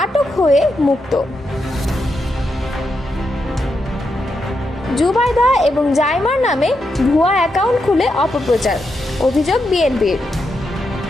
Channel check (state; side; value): normal; both; correlation 0.84